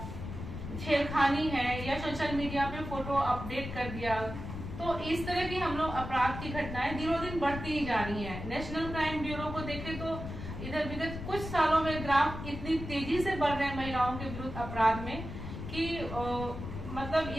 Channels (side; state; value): left; noise; rumble, 8 dB below the sound